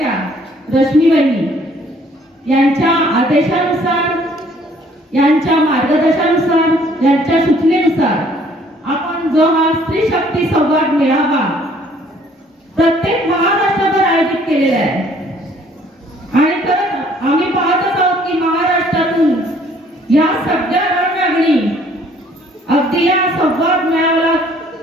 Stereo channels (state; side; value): normal; both; correlation 0.60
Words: रश्मीबाई यांच्या आदेशानुसार, यांच्या मार्गदर्शनानुसार, यांच्या सूचनेनुसार आपण जो हा स्त्री शक्ती संवाद मेळावा प्रत्येक महाराष्ट्रभर आयोजित केलेला आहे. आणि तर आम्ही पाहतच आहोत की महाराष्ट्रातून या सगळ्या रणरागिणी अगदी या संवाद मेळाव्याला